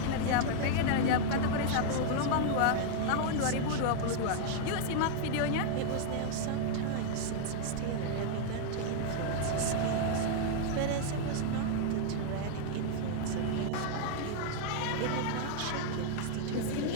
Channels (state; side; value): different; both; correlation 0.00